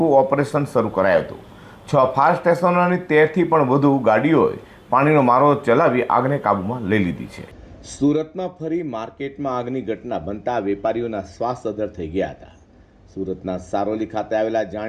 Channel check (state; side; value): identical; both; correlation 1.00